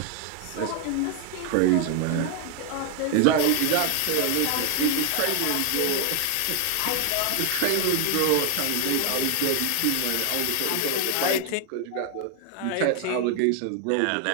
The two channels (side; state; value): both; different; correlation 0.00